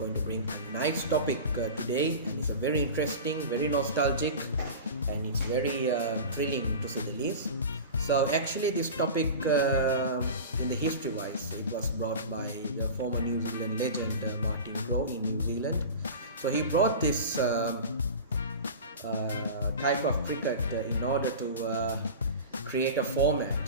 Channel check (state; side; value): inverted; both; correlation -0.32